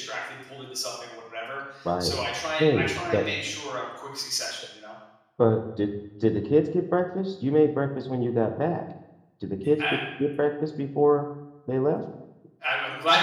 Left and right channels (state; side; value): identical; both; correlation 1.00